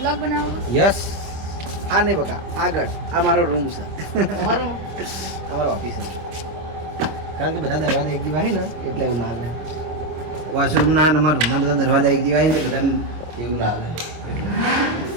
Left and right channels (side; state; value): left; late; 25 ms